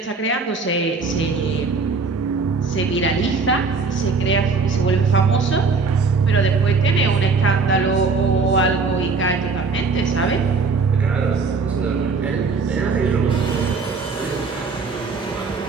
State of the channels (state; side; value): quieter; left; 4.5 dB